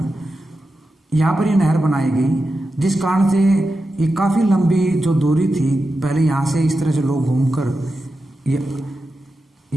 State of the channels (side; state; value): both; normal; correlation 0.90